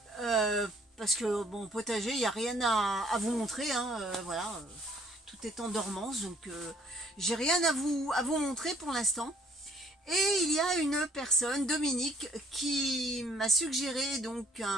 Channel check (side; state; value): both; normal; correlation 0.61